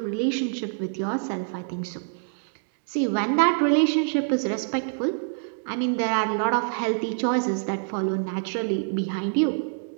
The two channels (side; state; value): left; silent; digital silence